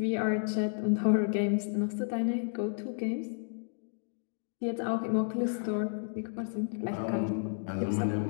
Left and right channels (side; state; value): right; silent; digital silence